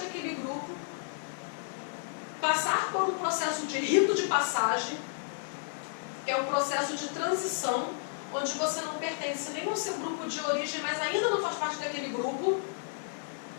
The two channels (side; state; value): right; silent; digital silence